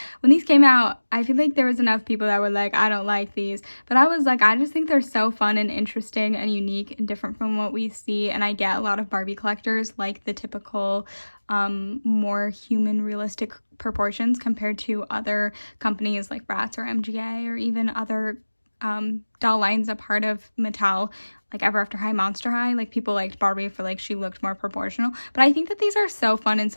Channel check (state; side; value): inverted; both; correlation -1.00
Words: When these came out, I feel like there was enough people that were like, I don't like these, but I was like, I just think they're so fun and interesting and unique and different from what we see. And I get a lot of Barbie collectors like the typical more human realistic proportions compared to other companies like Bratz or MGA or even other doll line's a part of Mattel, like Ever After High, Monster High. Like, people liked Barbie for like she looked more proportional, but I think that these are so fun and